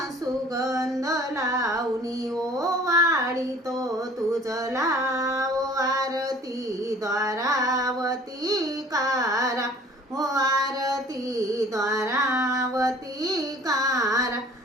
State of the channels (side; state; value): both; normal; correlation 0.51